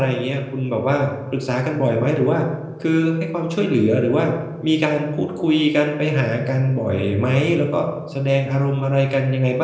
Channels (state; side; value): identical; both; correlation 1.00